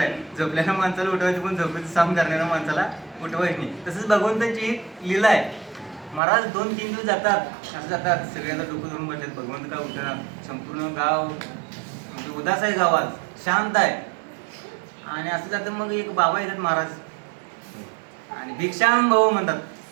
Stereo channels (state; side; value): drops out; left; at 6.2 s